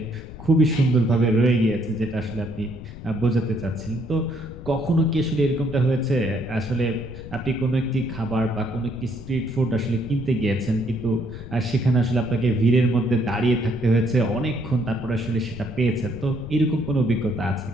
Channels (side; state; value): left; noise; rumble, 13 dB below the sound